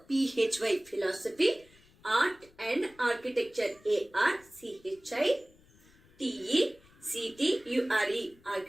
philosophy, art and architecture, architecture,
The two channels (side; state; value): left; noise; rumble, 28 dB below the sound